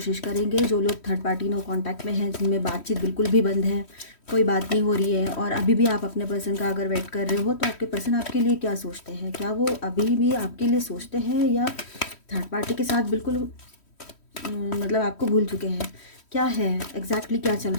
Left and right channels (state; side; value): late; right; 3.1 ms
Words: करेंगे। जो लोग थर्ड पार्टी नो कांटेक्ट में हैं, जिनमें बातचीत बिल्कुल भी बंद है, कोई बात नहीं हो रही है और अभी भी आप अपने पर्सन का अगर वेट कर रहे हो, तो आपके पर्सन आपके लिए क्या सोचते हैं? क्या वो अभी भी आपके लिए सोचते हैं या थर्ड पार्टी के साथ बिल्कुल मतलब आपको भूल चुके हैं? क्या है एग्जैक्टली क्या चल